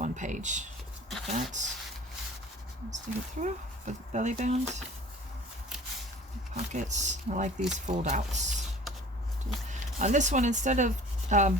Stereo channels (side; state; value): both; normal; correlation 0.46